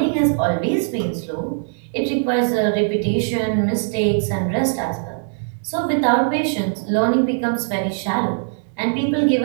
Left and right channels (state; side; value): silent; left; digital silence